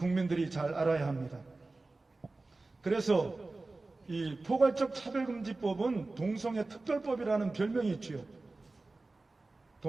잘 알아야 합니다. 그래서 이 포괄적 차별금지법은 동성애 특별법이라는 별명이 있지요.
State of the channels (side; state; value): left; quieter; 3.3 dB